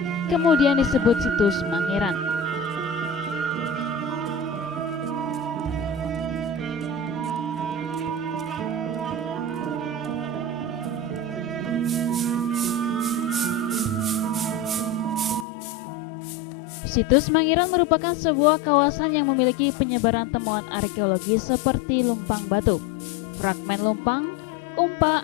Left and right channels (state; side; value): drops out; right; at 15.5 s